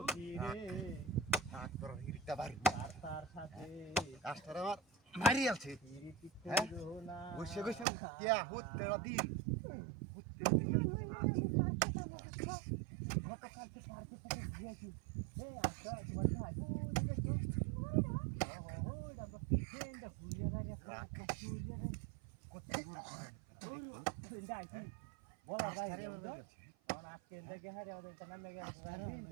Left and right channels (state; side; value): drops out; left; at 7.9 s